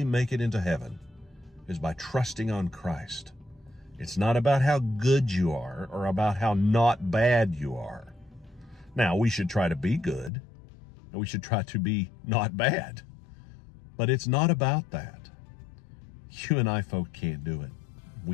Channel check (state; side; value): drops out; right; at 10.3 s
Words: make it into heaven is by trusting on Christ. It's not about how good you are or about how not bad you are. Now, we should try to be good, and we should try to be not bad. But it's not about that. You and I folk can't do it.